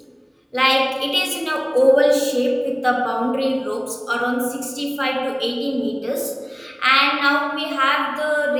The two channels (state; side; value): identical; both; correlation 1.00